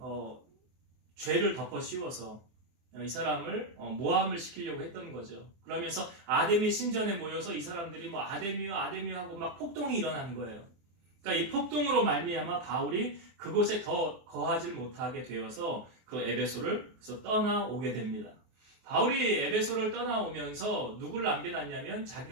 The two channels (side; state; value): left; late; 23 ms